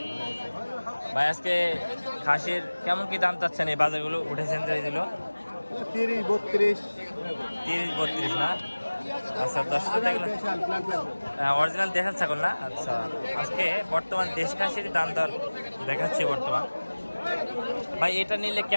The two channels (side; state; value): both; inverted; correlation -1.00